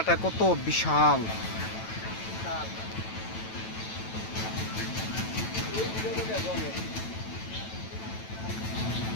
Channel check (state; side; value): late; right; 9.1 ms